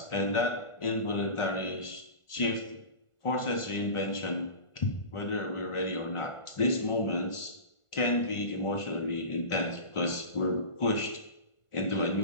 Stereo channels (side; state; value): right; late; 1.4 ms